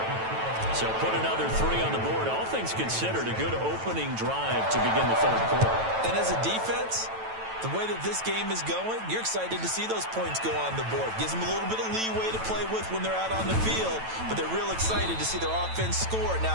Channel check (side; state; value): left; late; 9.1 ms